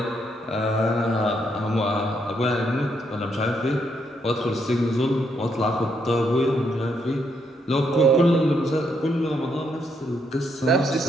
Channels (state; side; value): normal; both; correlation 0.76